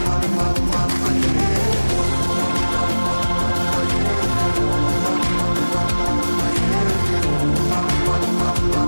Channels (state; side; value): inverted; both; correlation -1.00